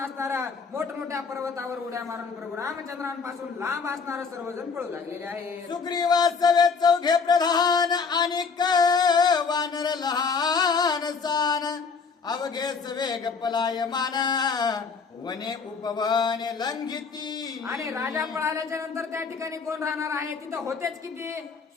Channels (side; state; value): right; quieter; 5.2 dB